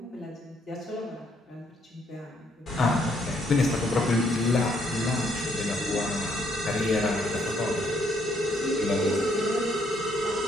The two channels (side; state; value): both; normal; correlation 0.70